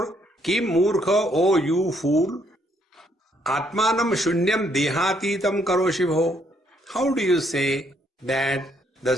Kim Murkha, O you fool, Atmanam Shunyam Dehatitam Karoshibho. How do you say that the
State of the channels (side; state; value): both; normal; correlation 0.70